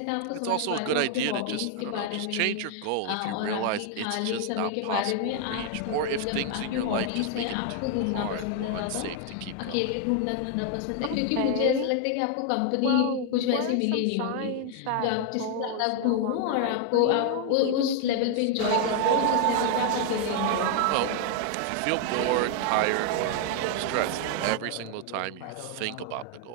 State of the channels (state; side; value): different; both; correlation 0.00